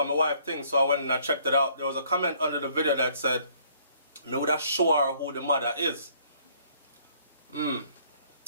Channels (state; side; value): inverted; both; correlation -0.62